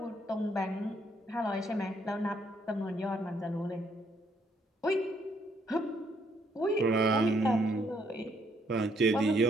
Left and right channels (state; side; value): normal; both; correlation 0.70